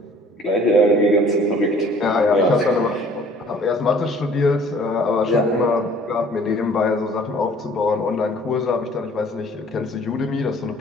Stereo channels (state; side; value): normal; both; correlation 0.54